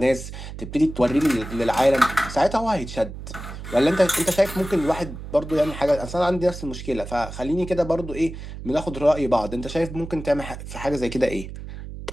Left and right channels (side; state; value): right; noise; hum, 11 dB below the sound